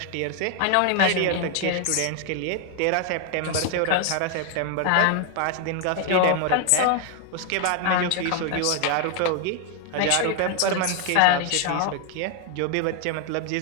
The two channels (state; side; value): different; both; correlation 0.00